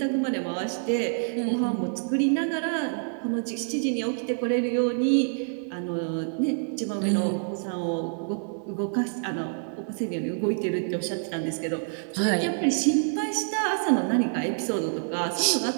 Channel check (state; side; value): silent; left; 58 dB below the other